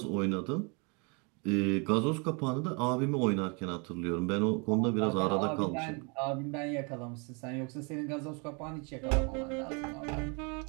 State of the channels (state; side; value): quieter; left; 33.1 dB